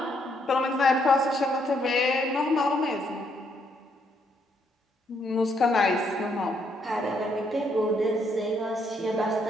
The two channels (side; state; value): both; normal; correlation 0.73